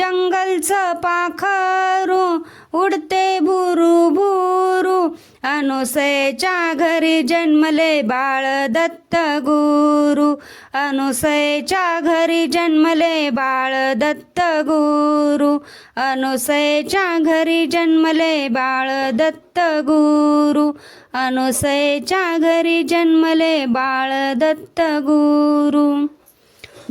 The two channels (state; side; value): identical; both; correlation 1.00